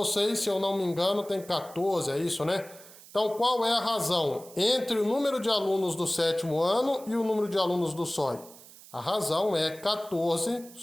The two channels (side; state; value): right; noise; hiss, 20 dB below the sound